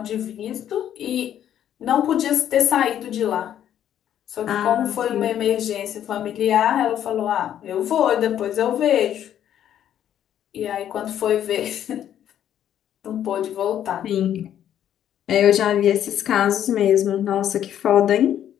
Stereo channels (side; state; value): right; quieter; 10.5 dB